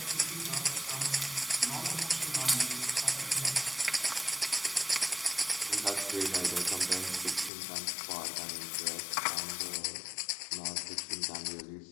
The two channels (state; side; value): drops out; right; at 7.5 s